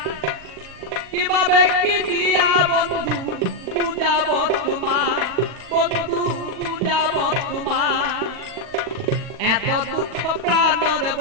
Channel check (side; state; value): left; late; 40 ms